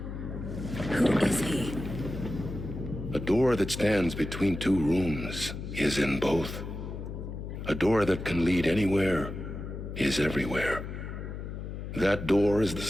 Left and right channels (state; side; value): noise; left; hum, 7 dB below the sound